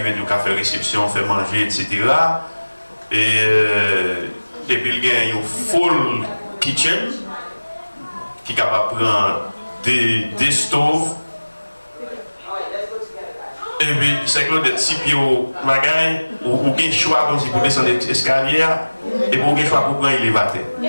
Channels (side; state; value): both; inverted; correlation -1.00